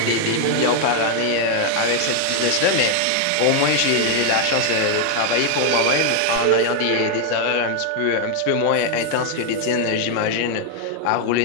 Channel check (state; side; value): different; both; correlation 0.00